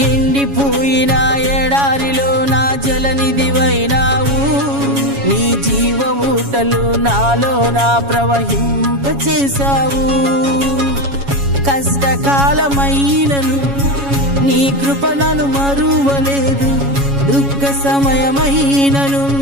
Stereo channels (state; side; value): late; left; 7.2 ms